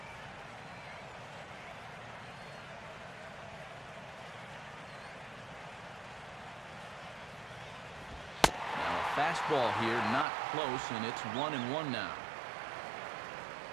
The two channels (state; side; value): drops out; left; at 10.2 s